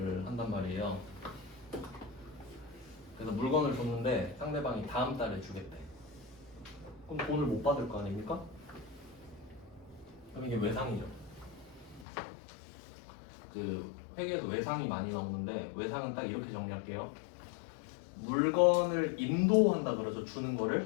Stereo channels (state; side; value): drops out; right; at 12.1 s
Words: 한단 말이에요. 그래서 물건을 줬는데 상대방이 다음 달에 주겠대. 그럼 돈을 못 받을 거 아닙니까? 그럼 이게 외상이죠. 그 회계에서 외상이 많이 나오는데 외상은 딱 이렇게 정리할게요. 물건을 인도한다 그래서 주는